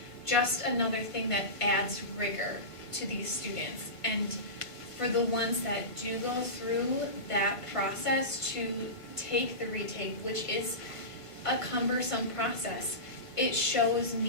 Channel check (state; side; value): late; right; 1.5 ms